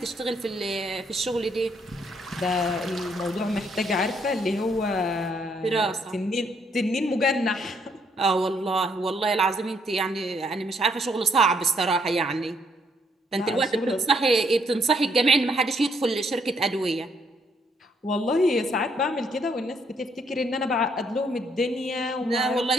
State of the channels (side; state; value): both; normal; correlation 0.71